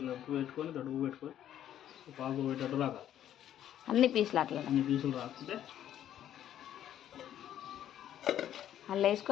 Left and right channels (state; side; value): quieter; right; 11.1 dB